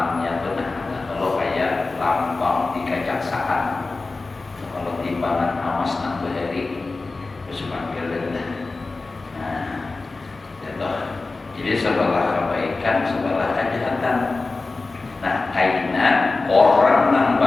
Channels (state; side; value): quieter; right; 3.6 dB